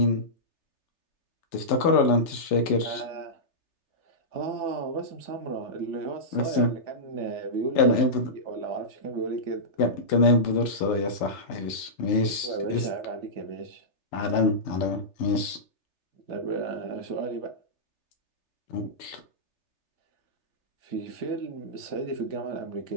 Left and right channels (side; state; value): right; late; 3.3 ms